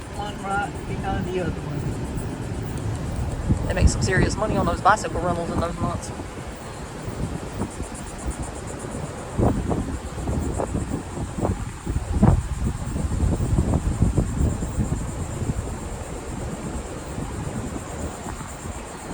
right behind the other one. They make some serious money on those bicycle rentals in those months.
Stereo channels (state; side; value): identical; both; correlation 1.00